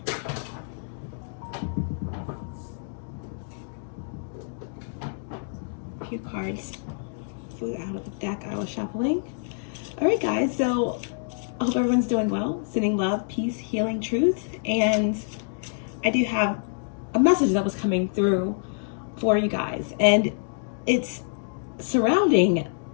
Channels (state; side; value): silent; right; digital silence